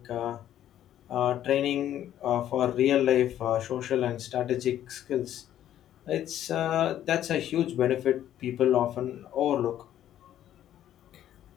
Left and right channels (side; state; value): right; quieter; 11.6 dB